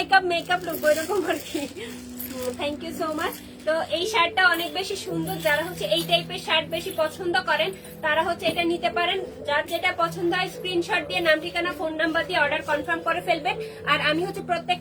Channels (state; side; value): identical; both; correlation 1.00